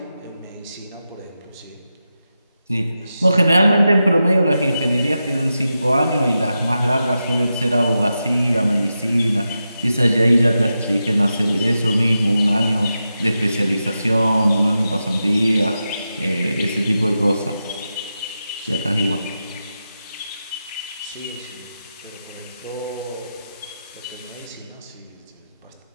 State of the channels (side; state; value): both; inverted; correlation -0.89